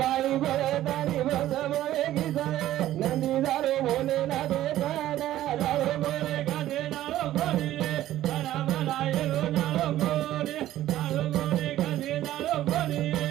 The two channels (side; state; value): left; quieter; 13.7 dB